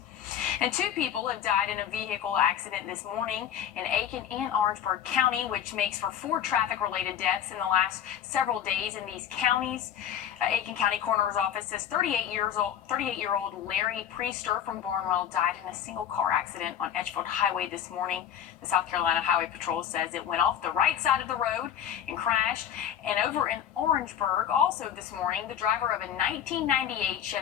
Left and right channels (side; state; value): right; quieter; 9.5 dB